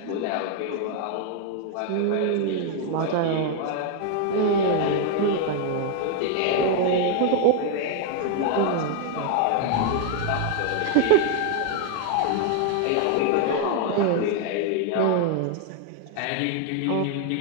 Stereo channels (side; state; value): both; different; correlation 0.00